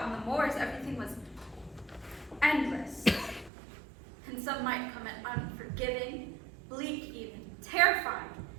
on the moors, everything was endless. And some might come at unforgiving, bleak even, terrifying.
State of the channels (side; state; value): left; drops out; at 3.5 s